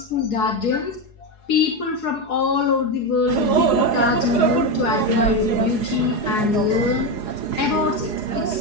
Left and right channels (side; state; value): right; late; 4.8 ms